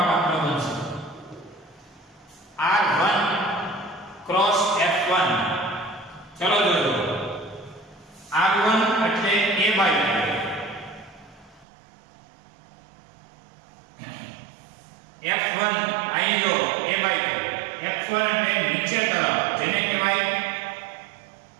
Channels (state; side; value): drops out; left; at 11.7 s